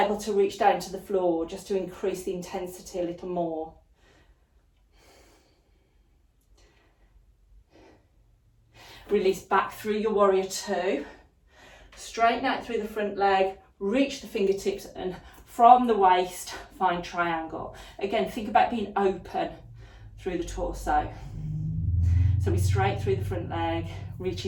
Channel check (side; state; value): both; identical; correlation 1.00